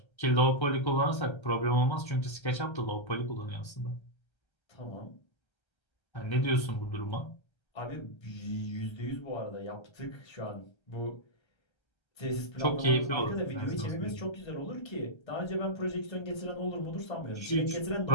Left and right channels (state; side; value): late; right; 1.3 ms